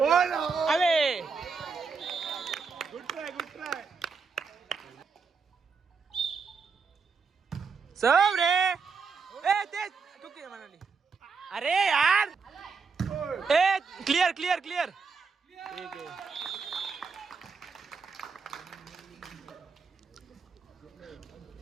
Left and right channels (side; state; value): left; quieter; 5.2 dB